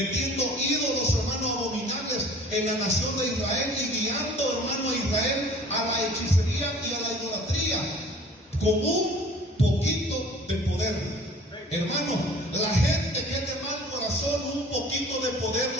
ídolos, hermano, abominables en la nación de Israel y guiando, hermano, a Israel a la hechicería y a la idolatría, con un poquito de poder. Hermano, la gente que es de mal corazón, un poquito de poder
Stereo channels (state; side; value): normal; both; correlation 0.48